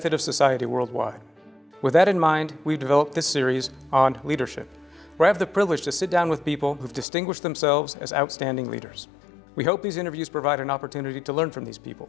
of society worldwide. With that in mind, we've developed this series on leadership, where I have the privilege to sit down with people who've distinguished themselves as outstanding leaders. We hope these interviews provide an opportunity to learn from these people,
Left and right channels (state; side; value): drops out; right; at 7.1 s